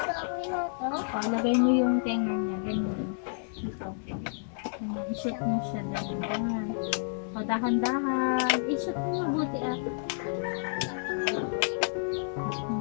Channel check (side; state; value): right; silent; digital silence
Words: O, lagay mo yung tenga niya. Ganyan. Dito. I-shoot mo siya dahan-dahan. O, dahan-dahan. I-shoot mo mabuti ah.